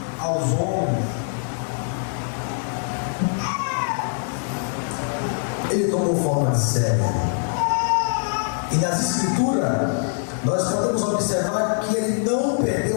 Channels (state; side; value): silent; right; digital silence